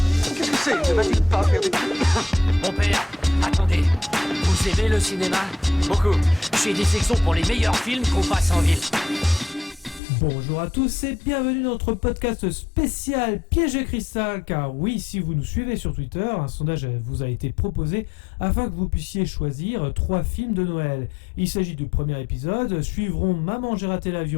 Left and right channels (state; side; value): drops out; right; at 10.0 s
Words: Qu'est-ce que c'est? Ne va-t-il pas faire des trucs? Mon père, attendez, vous aimez le cinéma? Beaucoup. J'ai des sections pour les meilleurs films qu'on passe en ville. Bonjour à tous et bienvenue dans notre podcast spécial Piège de cristal, car oui, si vous nous suivez sur Twitter, un sondage vous a été proposé afin que vous puissiez choisir 3 films de Noël. Il s'agit du premier épisode, suivront Maman j'ai raté